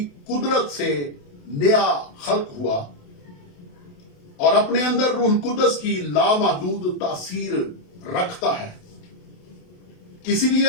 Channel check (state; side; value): late; right; 28 ms